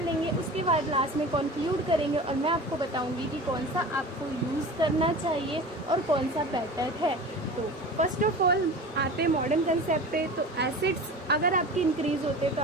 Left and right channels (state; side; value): normal; both; correlation 0.35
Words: लेंगे, उसके बाद लास्ट में कंक्लूड करेंगे और मैं आपको बताऊंगी कि कौन सा आपको यूज़ करना चाहिए और कौन सा बेटर है। तो फर्स्ट ऑफ ऑल आते मॉडर्न कंसेप्ट पे। तो एसेट्स अगर आपके इंक्रीज होते तो